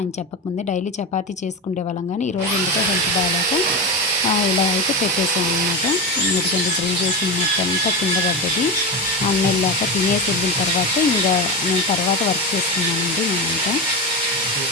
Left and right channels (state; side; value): normal; both; correlation 0.18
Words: చెప్పకముందే. డైలీ చపాతీ చేసుకునే వాళ్ళం కానీ ఈరోజు ఎందుకో హెల్త్ బాగాలేక ఇలా అయితే పెట్టేసాను అనమాట. ఎందుకంటే డ్రిల్ చేసిన మొత్తం అంతా కింద పడ్డది. అన్న వెళ్ళాక తినేసి వెళ్ళిన తర్వాత ఇంకా నేను తర్వాత వర్క్ చేసుకున్నానండి. నేనంతా